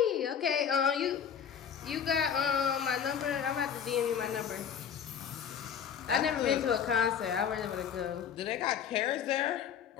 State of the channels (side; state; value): right; quieter; 8.1 dB